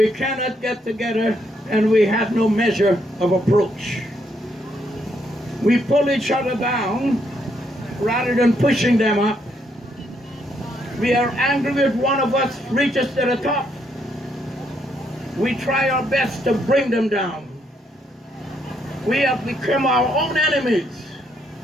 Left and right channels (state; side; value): normal; both; correlation 0.74